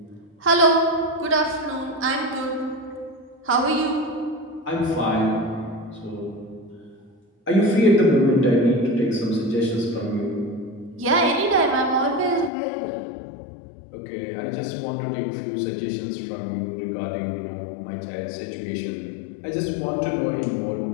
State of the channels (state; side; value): drops out; right; at 12.5 s